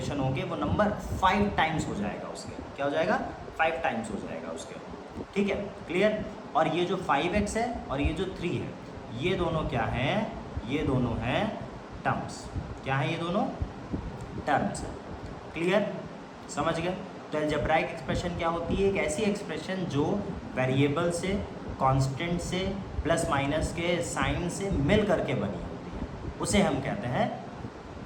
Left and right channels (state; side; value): identical; both; correlation 1.00